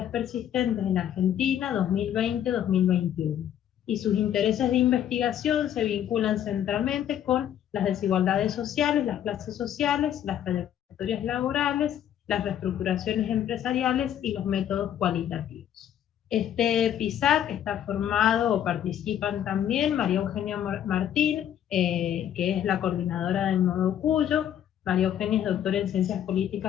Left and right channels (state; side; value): quieter; right; 10.4 dB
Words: Persistentes en Argentina 2020-2021. Y sus intereses de investigación se vinculan centralmente con las desigualdades sociales, las clases sociales, las trayectorias laborales, las reestructuraciones empresariales y los métodos cualitativos. Este PISAC está formado, o participan también, María Eugenia Martín, que es la coordinadora del Nodo Cuyo. María Eugenia es doctora en Ciencias